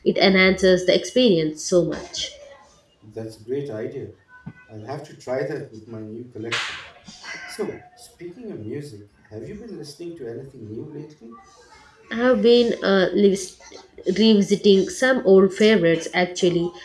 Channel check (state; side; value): identical; both; correlation 1.00